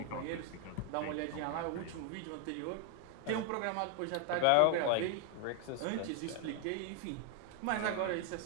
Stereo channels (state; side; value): different; both; correlation 0.01